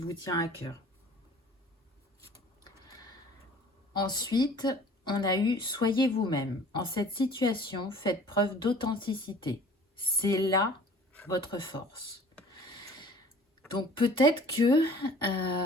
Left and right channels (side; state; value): both; normal; correlation 0.49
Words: tient à cœur. Ensuite, on a eu « Soyez vous-même ». En cette situation, faites preuve d'authenticité. C'est là votre force. Donc peut-être que